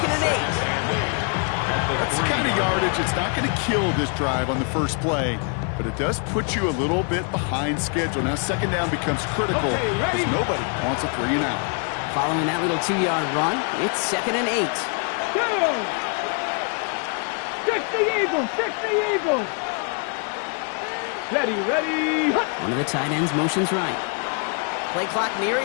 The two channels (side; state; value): right; quieter; 39.6 dB